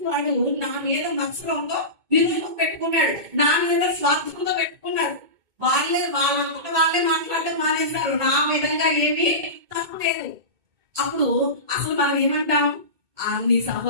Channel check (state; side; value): late; left; 2.2 ms